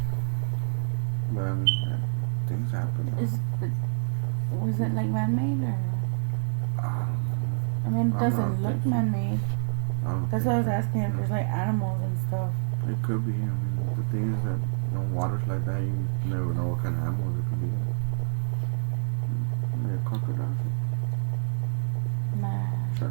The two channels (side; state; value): left; silent; digital silence